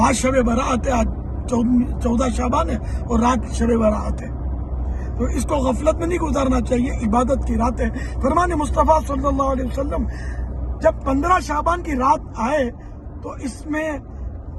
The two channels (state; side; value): identical; both; correlation 1.00